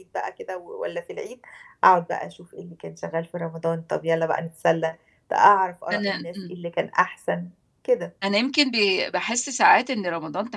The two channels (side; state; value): both; identical; correlation 1.00